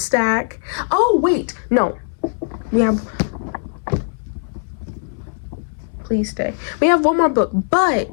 Oh wait, no, we have, please stay, we have one more book,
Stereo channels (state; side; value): silent; right; 62 dB below the other